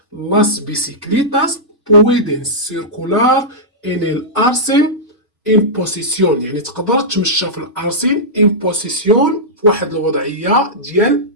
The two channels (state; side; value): normal; both; correlation -0.12